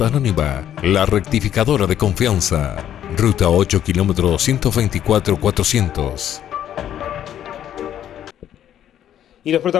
Anónima, la rectificadora de confianza. Ruta 8 km 124 400. Y los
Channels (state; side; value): quieter; right; 10.7 dB